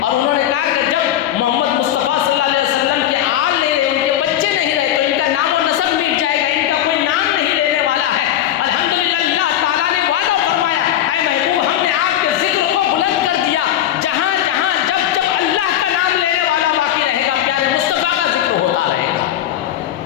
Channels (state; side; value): quieter; right; 11.6 dB